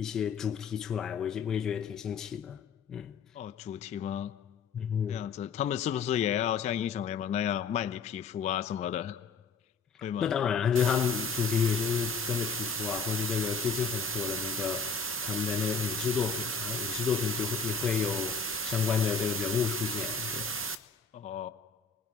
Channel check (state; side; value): quieter; right; 4.9 dB